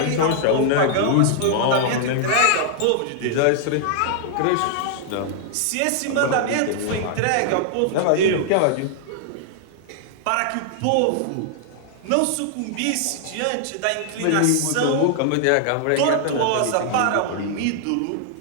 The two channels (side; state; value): both; different; correlation 0.00